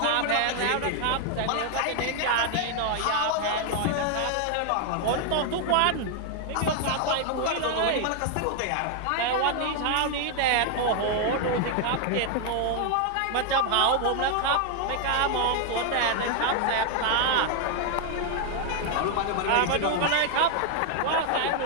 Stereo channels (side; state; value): both; different; correlation 0.00